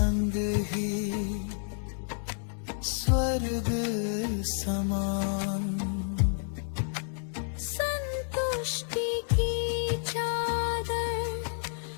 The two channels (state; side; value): silent; right; 58 dB below the other